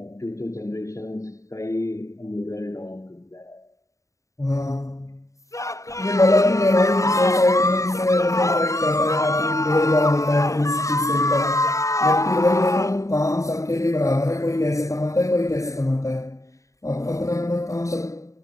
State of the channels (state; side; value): late; right; 0.15 ms